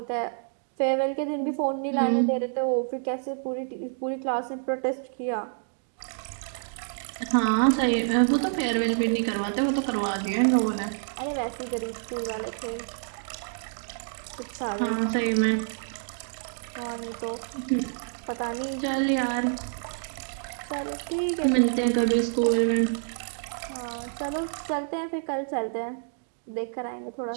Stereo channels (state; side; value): silent; left; digital silence